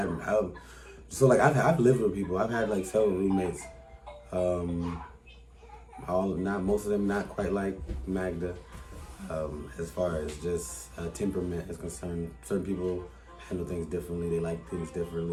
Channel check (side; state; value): both; identical; correlation 1.00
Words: lived with people. I've had several roommates. Most of them not quite like Magda. As far as just temperament is concerned, certain people handle things differently. They like things